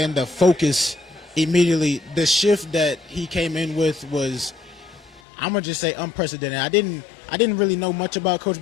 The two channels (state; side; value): drops out; right; at 5.2 s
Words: the focus immediately. The shift that he came in with was, I'm gonna just say, unprecedented. I didn't really know much about Coach